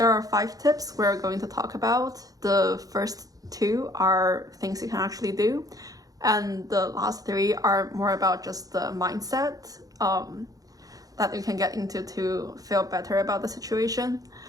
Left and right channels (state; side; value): late; left; 0.17 ms